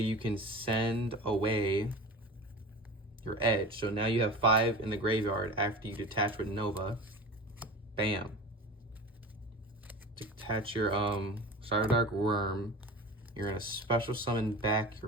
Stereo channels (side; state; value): both; normal; correlation 0.33